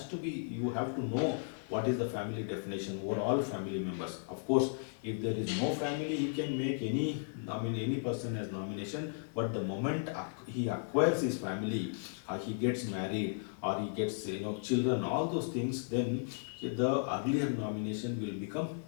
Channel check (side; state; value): right; silent; 54 dB below the other